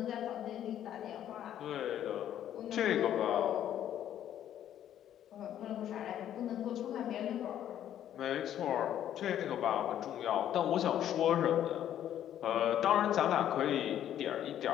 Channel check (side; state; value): right; quieter; 10.9 dB